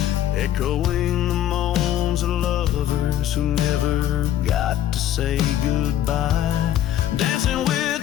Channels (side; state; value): right; quieter; 11.7 dB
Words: echoing the moans of lovers who never got to say goodbye. Dancing